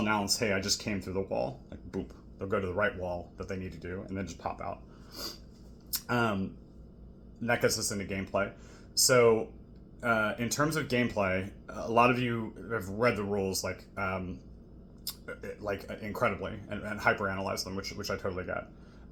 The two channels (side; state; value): both; identical; correlation 1.00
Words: announce, hey, I just came through the wall, like boop. They'll go to the right wall that they need to do, and then just pop out. And that gets us into gameplay. So in terms of gameplay, a lot of you have read the rules like incredibly and hyper analyze them, which I totally get.